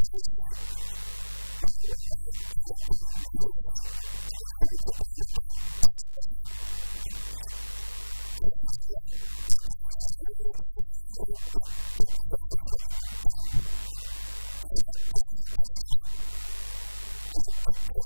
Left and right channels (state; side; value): inverted; both; correlation -1.00